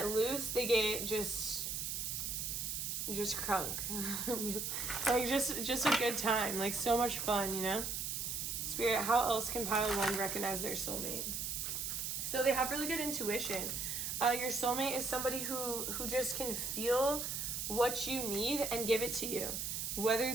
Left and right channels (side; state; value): right; noise; hiss, 2 dB below the sound